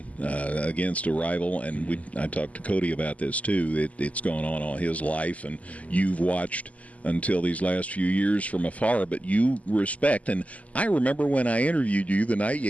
against a rival, and I talked to Cody about this too. It's gone on all his life, and you've watched until these last few years from afar, but you respect. And I remember when I interviewed you the night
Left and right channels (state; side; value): late; right; 0.071 ms